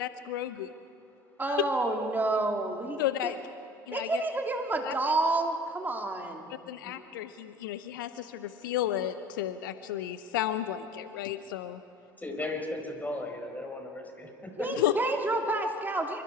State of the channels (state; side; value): normal; both; correlation 0.43